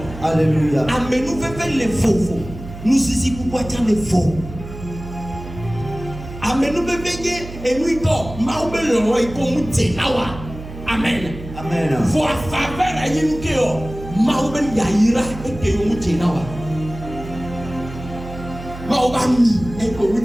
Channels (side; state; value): right; noise; hum, 12 dB below the sound